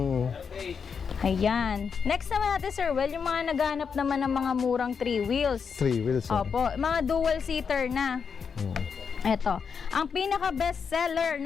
Ayan. Next naman natin, Sir Well, yung mga naghanap naman ng mga murang 3 wheels. 3 wheels. Opo, mga dual seater na. Eto, ang pinaka best seller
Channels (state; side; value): quieter; right; 6.2 dB